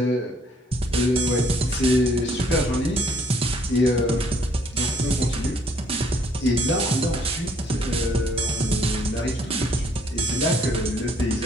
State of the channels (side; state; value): both; normal; correlation 0.65